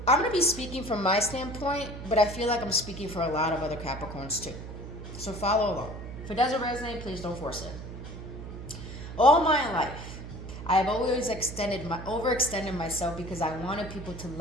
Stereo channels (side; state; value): right; noise; hum, 10 dB below the sound